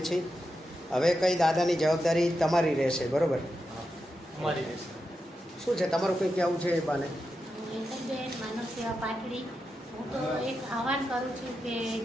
છીએ. હવે કંઈ દાદાની જવાબદારી તમારી રહેશે, બરાબર? અમારી રહેશે. શું છે તમારું કંઈ કહેવું છે એ બાને? હેતલબેન માનવ સેવા પાટડી. હું તો એક આહવાન કરું છું કે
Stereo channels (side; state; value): both; normal; correlation 0.88